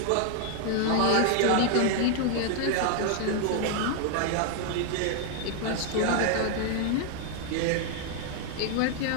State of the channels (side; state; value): both; different; correlation 0.00